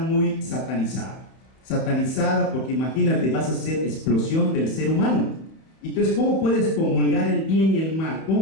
satanizada, porque imagínate, vas a hacer explosión del ser humano. Entonces, ¿cómo puedes comulgar el bien y el mal?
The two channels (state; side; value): late; right; 31 ms